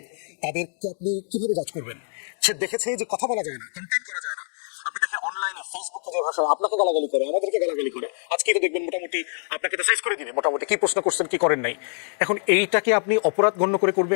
তাদেরকে আপনি কিভাবে জাজ করবেন? সে দেখেছে যে কথা বলা যায় না, কন্টেন্ট করা যায় না। আপনি দেখেন অনলাইনে ফেসবুকে যে ভাষা আপনাকে গালাগালি করে, আমাদেরকে গালাগালি করে, আজকে তো দেখবেন মোটামুটি আপনাকে তো সাইজ করে দিবে মোটামুটি কি প্রশ্ন করছেন কি করেন নাই। এখন এইটাকে আপনি অপরাধ গণ্য করে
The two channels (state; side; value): silent; right; digital silence